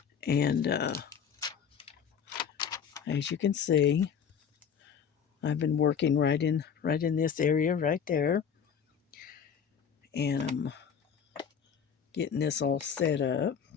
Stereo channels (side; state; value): right; quieter; 7.4 dB